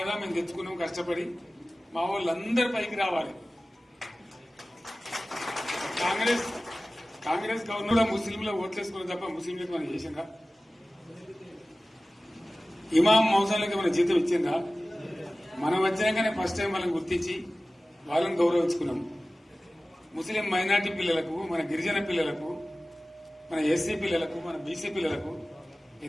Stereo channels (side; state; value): both; normal; correlation 0.97